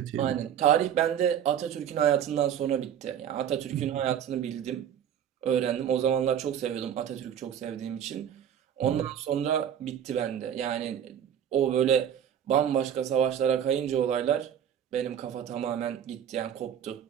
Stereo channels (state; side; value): quieter; left; 9.3 dB